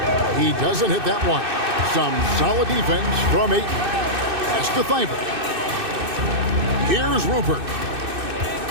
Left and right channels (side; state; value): left; late; 2.6 ms